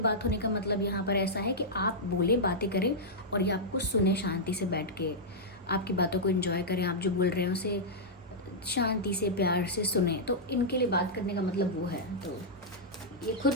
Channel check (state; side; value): normal; both; correlation -0.09